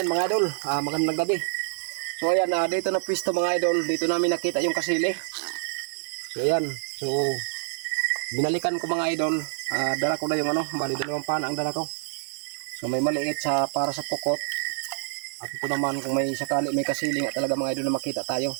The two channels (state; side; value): silent; left; digital silence